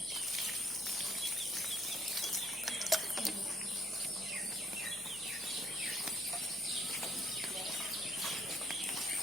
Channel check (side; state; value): right; noise; hum, 22 dB below the sound